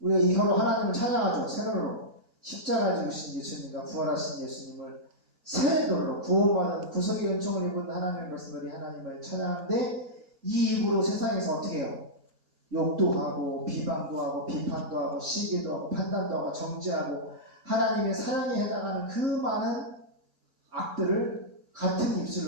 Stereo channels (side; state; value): both; normal; correlation -0.11